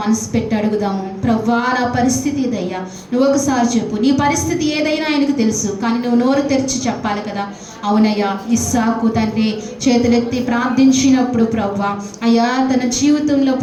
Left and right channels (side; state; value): both; identical; correlation 1.00